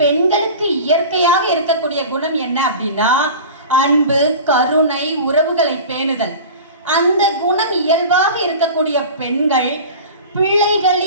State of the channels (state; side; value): inverted; both; correlation -0.35